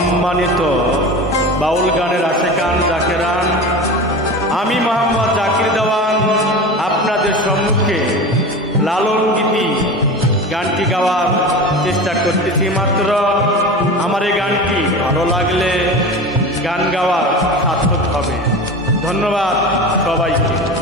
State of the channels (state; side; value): normal; both; correlation 0.31